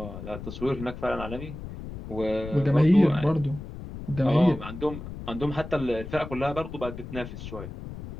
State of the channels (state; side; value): noise; left; rumble, 10 dB below the sound